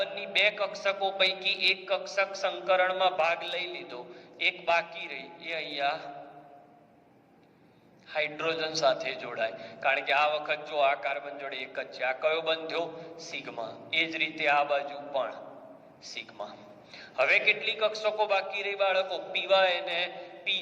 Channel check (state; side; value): identical; both; correlation 1.00